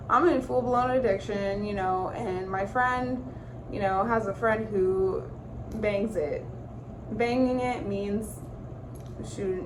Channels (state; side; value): identical; both; correlation 1.00